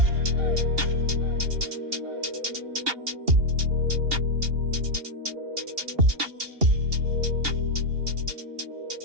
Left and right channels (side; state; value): left; late; 2.8 ms